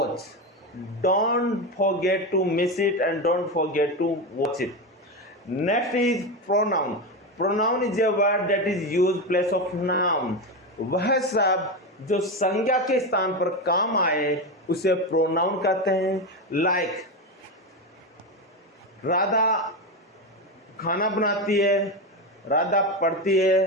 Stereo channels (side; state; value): both; normal; correlation 0.15